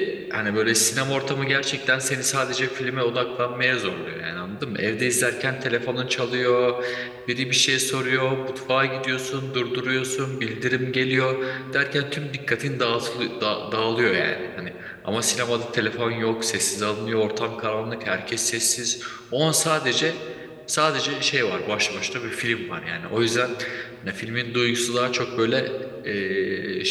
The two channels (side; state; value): both; identical; correlation 1.00